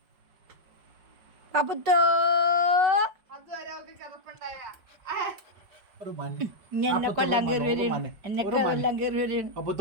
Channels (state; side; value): late; left; 5.1 ms